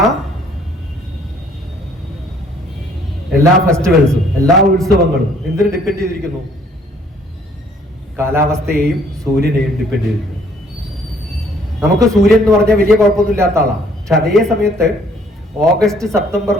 ഫെസ്റ്റിവൽസും, എല്ലാ ഉത്സവങ്ങളും എന്തിനു ഡിപ്പെൻഡ് ചെയ്തിരിക്കുന്നു? കാലാവസ്ഥയെയും സൂര്യനെയും ഡിപ്പെൻഡ് ചെയ്തിരിക്കുന്നു. നമുക്ക് സൂര്യൻ എന്ന് പറഞ്ഞാൽ വലിയ കുഴപ്പമൊന്നും ഇല്ലാത്ത ആളാണ്. പക്ഷെ അതേ സമയത്ത്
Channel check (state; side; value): normal; both; correlation 0.61